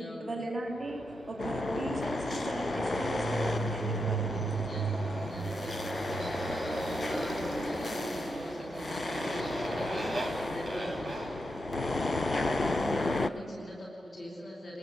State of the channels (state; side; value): normal; both; correlation 0.85